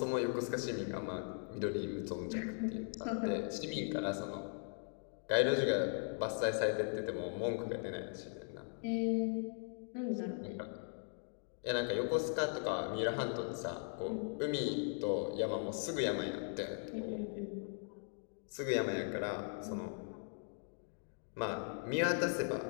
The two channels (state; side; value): silent; right; 52 dB below the other